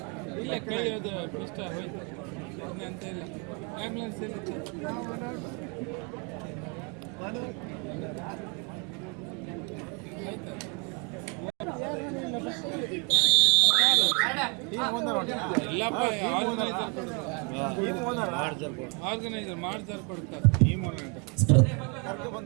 ಇಲ್ಲ ಕೈ ಅದು ಇಷ್ಟ ಹೋಯ್ತು ಅಂತ ಇಲ್ಲ ಆಂಬ್ಯುಲೆನ್ಸ್ ಇಲ್ಲ ಎಲ್ಲಪ್ಪ ಆರ್ಗನೈಸರ್ ಮಾಡ್ತಾರೆ ಕೊಡ್ತಾರೆ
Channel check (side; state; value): left; quieter; 34.1 dB